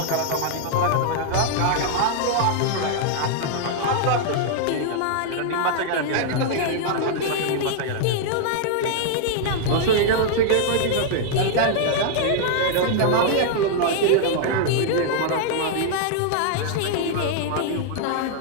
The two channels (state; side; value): different; both; correlation -0.01